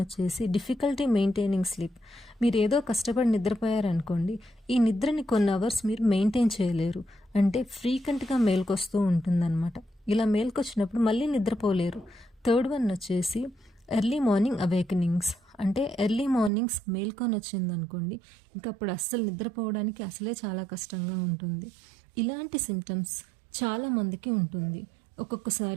వచ్చేసి డిఫికల్టీ మెయింటైనింగ్ స్లీప్. మీరు ఏదో కష్టపడి నిద్రపోయారనుకోండి, ఈ నిద్రని కొన్ని అవర్స్ మీరు మెయింటైన్ చేయలేరు, అంటే ఫ్రీక్వెంట్గా మేల్కొస్తూ ఉంటుందన్నమాట. ఇలా మేల్కొచ్చినప్పుడు మళ్ళీ నిద్రపోలేరు. థర్డ్ వన్ వచ్చేసి ఎర్లీ మార్నింగ్ అవేకనింగ్స్, అంటే ఎర్లీ మార్నింగ్స్ మేల్కొని వచ్చిందనుకోండి, ఇంకా అప్పుడు అస్సలు నిద్రపోవడానికి అసలే చాలా కష్టంగా ఉంటుంది. ఇలాంటి సిమ్టమ్స్ చాలామందికి ఉంటుంది.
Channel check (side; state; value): left; drops out; at 16.5 s